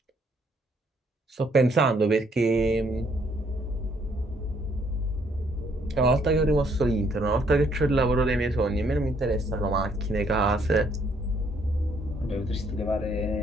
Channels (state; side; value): normal; both; correlation 0.68